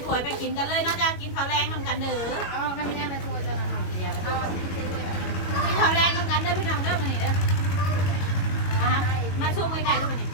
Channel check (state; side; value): late; right; 22 ms